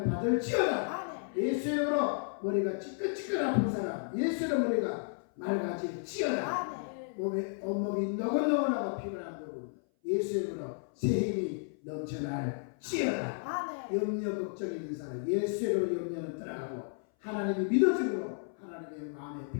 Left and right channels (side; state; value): right; silent; 56 dB below the other